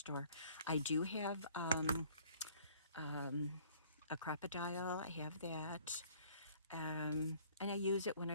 I do have a crocodile. I have that. And I use it when I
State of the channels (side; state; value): both; inverted; correlation -0.56